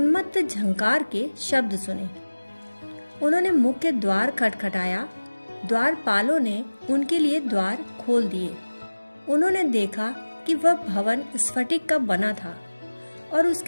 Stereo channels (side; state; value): both; inverted; correlation -1.00